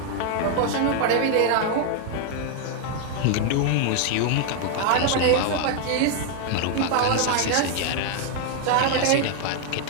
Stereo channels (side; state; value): both; different; correlation 0.00